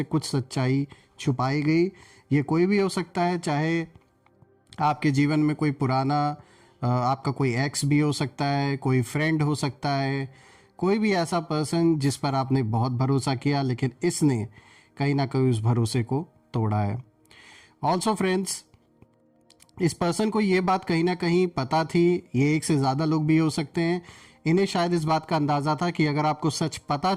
कुछ सच्चाई छुपाई गई। ये कोई भी हो सकता है, चाहे आपके जीवन में कोई पुराना आपका कोई एक्स भी हो सकता है, कोई फ्रेंड हो सकता है, कोई भी ऐसा पर्सन जिस पर आपने बहुत भरोसा किया लेकिन इसने कहीं ना कहीं उस भरोसे को तोड़ा है। ऑल्सो फ्रेंड्स, इस पर्सन को ये बात कहीं ना कहीं पता थी, ये एक से ज़्यादा लोग भी हो सकते हैं, इन्हें शायद इस बात का अंदाज़ा था कि अगर आपको सच पता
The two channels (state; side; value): identical; both; correlation 1.00